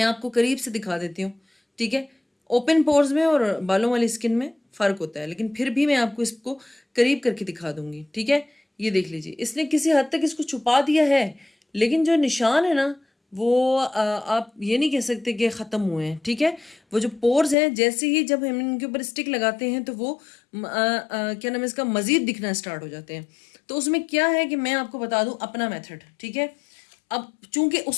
आपको करीब से दिखा देती हूँ। ठीक है। ओपन पोर्स में और बालों वाली स्किन में फ़र्क होता है, लेकिन फिर भी मैं आपको इसको करीब करके दिखा दूंगी। ठीक है। ये देख लीजिए, इसने किसी हद तक इसको छुपा दिया है, लेकिन जो निशान है ना वो आप ये नहीं कह सकते कि ख़त्म हुए हैं। ठीक है। वो जो पोर्स हैं, जैसे ही जब हम इनके ऊपर स्टिक लगाते हैं तो वो क्या नाम है इसका, मज़ीद दिखना स्टार्ट हो जाते हैं। तो उसमें क्या है कि मैं आपको बता दूं अपना मेथड। ठीक है। अब चूंकि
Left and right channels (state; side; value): drops out; right; at 17.6 s